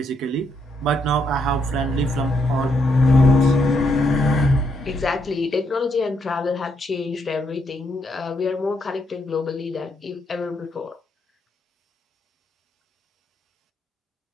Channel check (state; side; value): normal; both; correlation 0.76